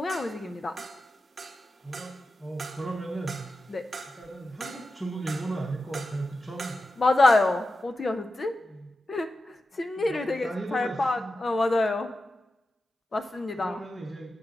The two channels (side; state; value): both; normal; correlation 0.92